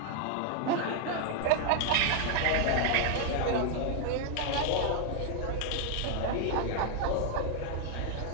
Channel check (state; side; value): different; both; correlation 0.00